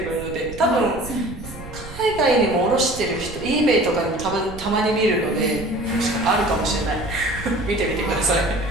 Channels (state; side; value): noise; right; rumble, 13 dB below the sound